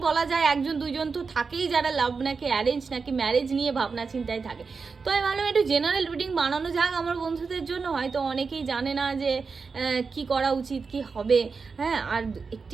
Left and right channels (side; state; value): left; quieter; 4.9 dB